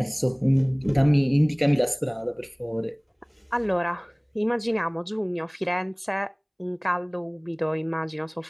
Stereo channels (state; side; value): identical; both; correlation 1.00